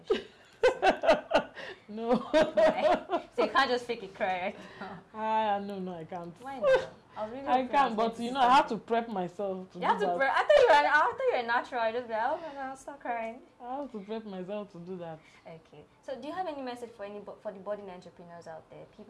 shirt? No. Why? So you can't just fake a cry right now? No, I can't. Why not? I can, but you know, I have to prep myself to you have to prep. I thought you were natural. I just be like, oh my God, stop crying. I have to prep myself to do that. Okay. So do you have any message for the budding entrepreneurs out there?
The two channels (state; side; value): identical; both; correlation 1.00